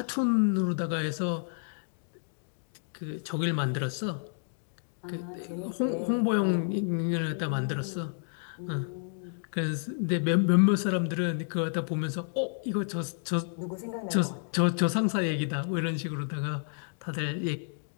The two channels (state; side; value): silent; right; digital silence